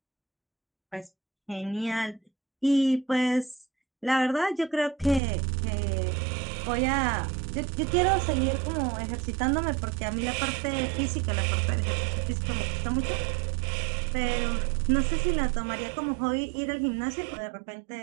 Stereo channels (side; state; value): left; drops out; at 5.2 s